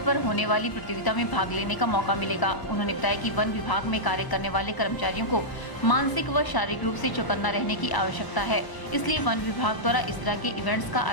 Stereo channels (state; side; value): late; right; 1.0 ms